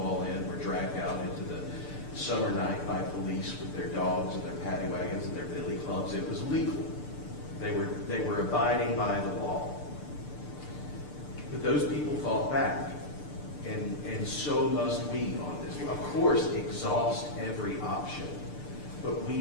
Inn were dragged out into the summer night by police with their dogs and their paddy wagons and their billy clubs, it was legal. They were abiding by the law. But those people fought back, and so must we on this. Of course, exhaust every option, but we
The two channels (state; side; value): late; right; 6.8 ms